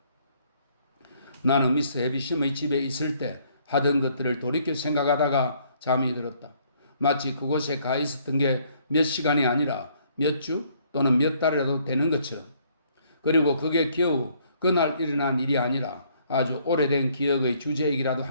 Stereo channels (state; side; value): inverted; both; correlation -0.65